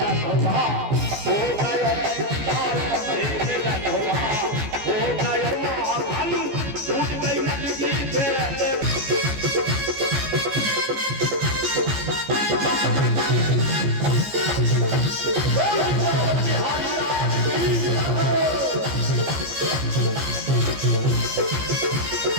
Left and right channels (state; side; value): late; left; 14 ms